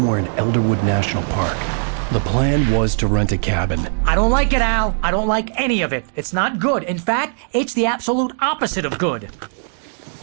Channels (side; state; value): left; silent; digital silence